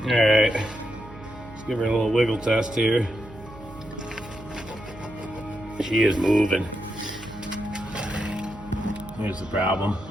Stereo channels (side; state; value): right; noise; hum, 18 dB below the sound